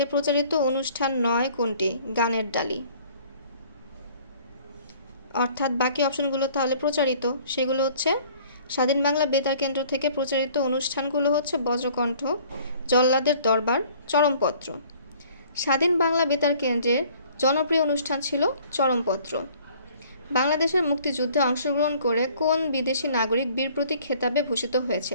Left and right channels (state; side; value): inverted; both; correlation -0.54